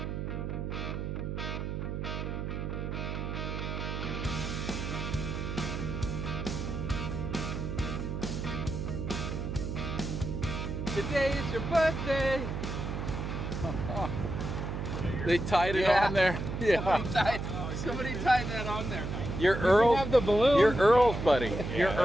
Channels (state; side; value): noise; right; hum, 4 dB below the sound